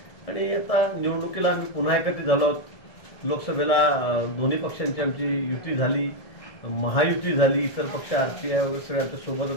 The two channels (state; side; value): late; right; 1.7 ms